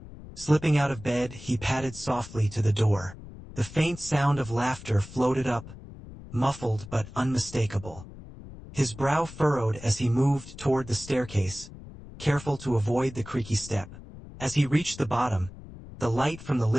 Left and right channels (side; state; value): left; noise; rumble, 16 dB below the sound